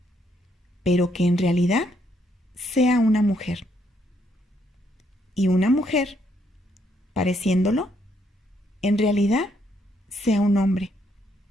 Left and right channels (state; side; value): normal; both; correlation 0.73